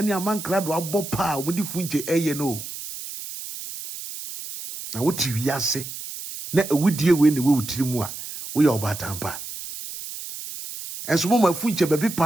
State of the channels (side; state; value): right; noise; hiss, 10 dB below the sound